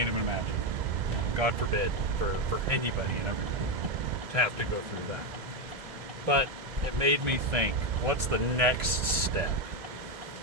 even imagine. God forbid for anybody and everybody to have to go through that. But it made me think, what's the next step?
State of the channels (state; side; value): late; left; 1.7 ms